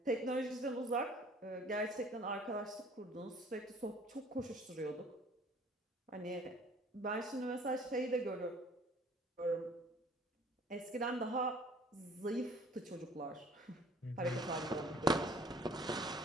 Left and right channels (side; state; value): both; normal; correlation 0.53